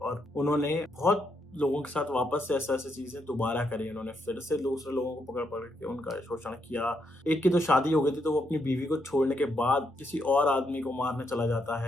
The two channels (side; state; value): both; normal; correlation 0.78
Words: उन्होंने बहुत लोगों के साथ वापस से ऐसे ऐसे चीजें दोबारा करी। उन्होंने फिर से दूसरे लोगों को पकड़ पकड़ के उनका शोषण किया। एक की तो शादी हो गई थी तो वो अपनी बीवी को छोड़ने के बाद किसी और आदमी को मारने चला जाता